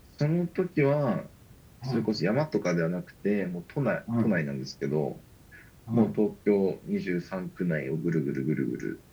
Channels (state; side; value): identical; both; correlation 1.00